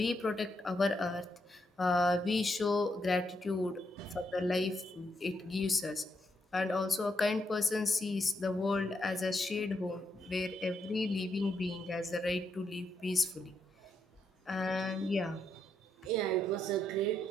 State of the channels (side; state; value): both; normal; correlation 0.79